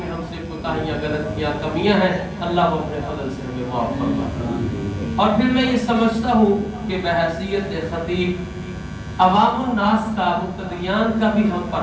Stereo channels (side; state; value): both; identical; correlation 1.00